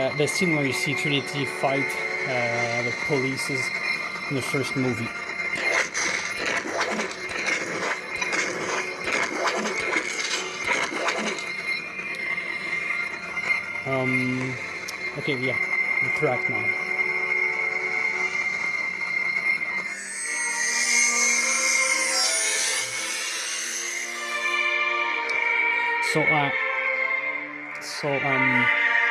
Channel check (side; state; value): both; identical; correlation 1.00